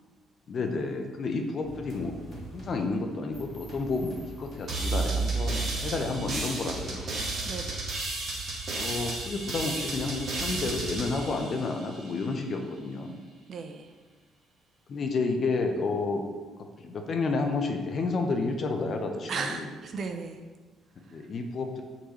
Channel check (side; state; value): both; normal; correlation 0.71